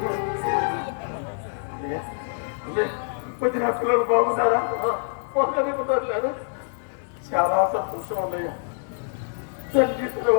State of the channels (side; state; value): right; silent; digital silence